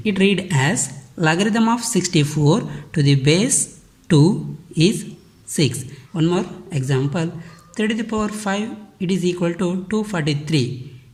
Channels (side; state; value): both; identical; correlation 1.00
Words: It read as logarithm of 64 to the base 2 is 6. One more example, 3 to the power 5 it is equal to 243.